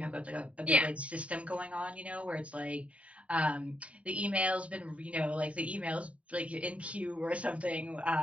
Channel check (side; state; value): left; late; 0.065 ms